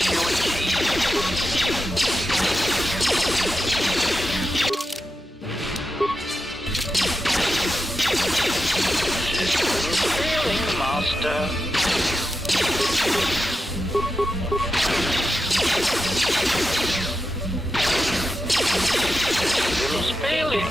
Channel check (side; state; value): both; normal; correlation 0.88